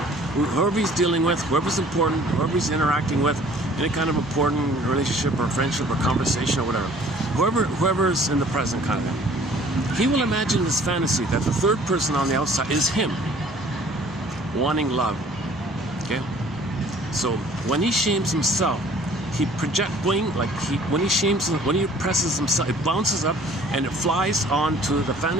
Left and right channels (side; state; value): both; normal; correlation 0.53